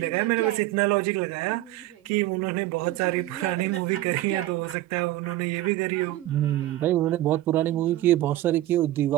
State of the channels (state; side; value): quieter; left; 15.3 dB